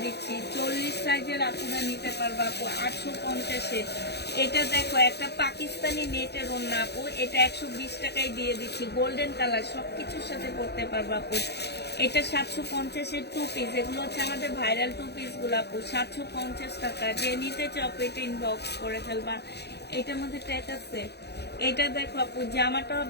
দিচ্ছি। 40 সাইজের আপনারা নিতে পারবা আপু 850-এ। এটা দেখো একটা পাকিস্তানি নেটের ওড়না আপু, এটা 120 টাকায় দিয়ে দিচ্ছি। গোল্ডেন কালার, সবকিছুর সাথে পরতে পারবা আপু। এটা 750-এর 2 পিস, এগুলো হচ্ছে আমাদের ভাইরাল 2 পিস গুলো আপু, 750 টাকা। যে নিতে চাও এটা ইনবক্স করে ফেলবা। এটার মধ্যে ট্যাগ আছে। এটা দেখো আপু, জামাটা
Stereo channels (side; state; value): right; late; 0.48 ms